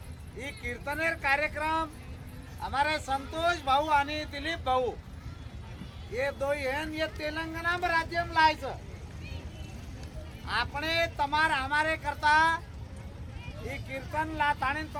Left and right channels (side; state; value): both; identical; correlation 1.00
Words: ही कीर्तनेर कार्यक्रम हमारे संतोष भाऊ आणि दिलीप भाऊ ये दो ये तेलंगाना में राज्य में लायच आपने तमार हमारे करता ही कीर्तन ला ताणी